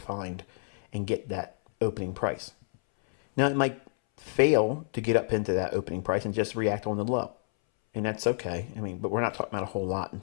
and get that opening price. Now, it might fail to get up into that opening price and just react on the low, and that's okay. I mean, but we're not talking about a whole lot in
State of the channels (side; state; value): right; silent; 59 dB below the other